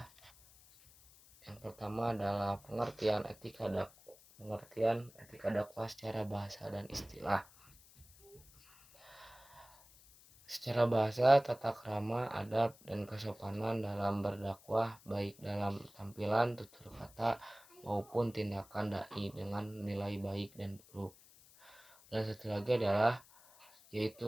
Yang pertama adalah pengertian etika dakwah secara bahasa dan istilah. Secara bahasa, tata krama, adab, dan kesopanan dalam berdakwah baik dalam tampilan, tutur kata, maupun tindakan dai dengan nilai baik dan buruk. Dan satu lagi adalah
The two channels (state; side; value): noise; left; hiss, 24 dB below the sound